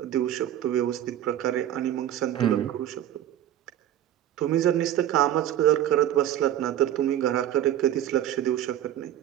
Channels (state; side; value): quieter; left; 11.6 dB